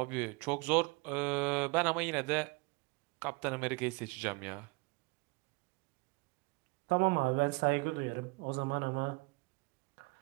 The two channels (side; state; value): left; quieter; 28.0 dB